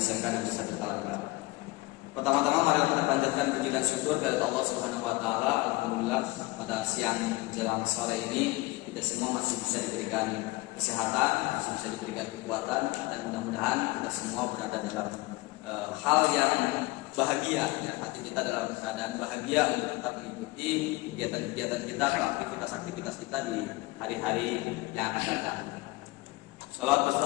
Negeri 1 Talaga. Pertama-tama mari kita panjatkan puji dan syukur kepada Allah Subhanahu wa taala. Alhamdulillah pada siang jelang sore ini kita semua masih bisa diberikan kesehatan, masih bisa diberikan kekuatan, dan mudah-mudahan kita semua berada dalam hal yang bahagia ya, hati kita dalam keadaan bahagia untuk tetap mengikuti kegiatan-kegiatan kita atau aktivitas-aktivitas kita di hari-hari yang akan datang. Salawat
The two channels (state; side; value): quieter; right; 21.9 dB